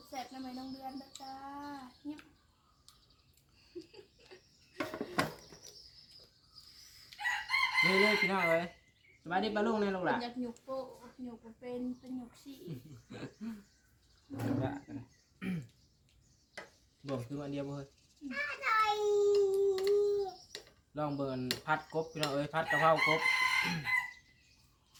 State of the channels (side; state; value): both; identical; correlation 1.00